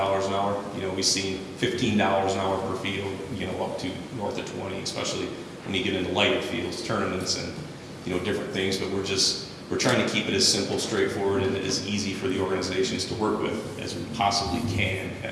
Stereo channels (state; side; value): identical; both; correlation 1.00